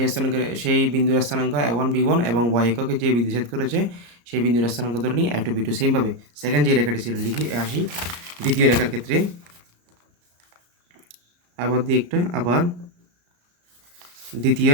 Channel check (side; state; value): left; late; 34 ms